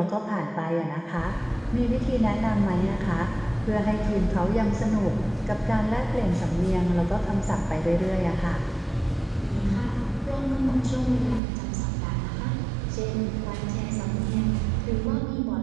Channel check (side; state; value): left; drops out; at 11.4 s